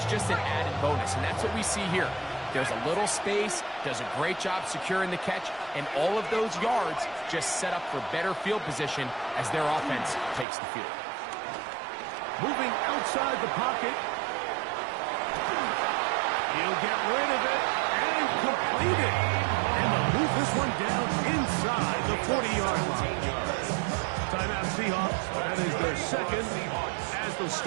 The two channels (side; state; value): left; drops out; at 10.5 s